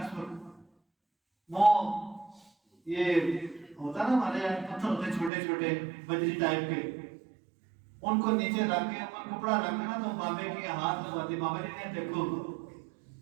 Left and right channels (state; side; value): drops out; left; at 5.3 s